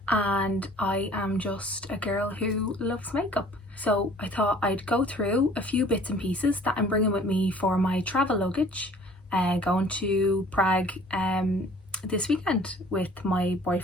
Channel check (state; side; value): normal; both; correlation 0.52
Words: and I am just a girl who loves makeup. So I thought I'd go through a few bits and pieces that I'm bringing with me for my travel luggage, going to Prague this weekend with my